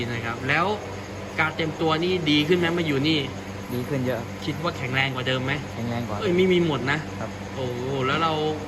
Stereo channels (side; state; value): both; identical; correlation 1.00